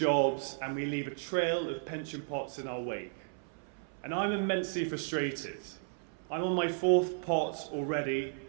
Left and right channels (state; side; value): silent; left; 55 dB below the other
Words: and we leave a trail of pension pots in our wake. And I'm immensely frustrated. I'm on my 4th pot already